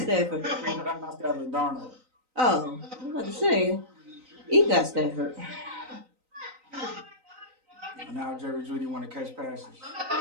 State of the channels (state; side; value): late; left; 3.9 ms